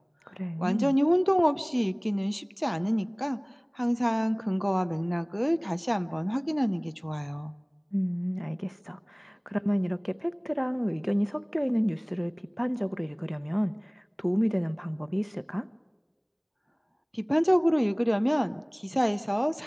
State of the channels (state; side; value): identical; both; correlation 1.00